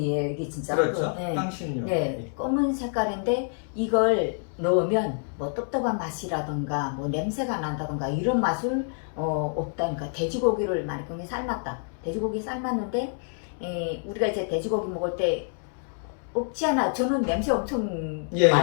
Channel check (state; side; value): silent; right; 55 dB below the other